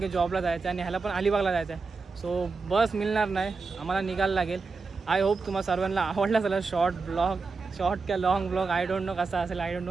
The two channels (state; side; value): quieter; left; 4.4 dB